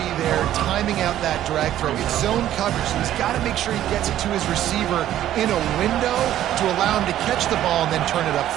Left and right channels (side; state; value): left; quieter; 12.4 dB